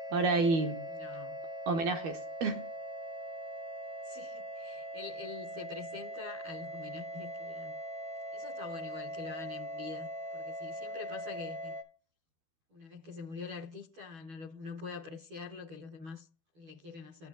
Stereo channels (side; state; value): left; late; 12 ms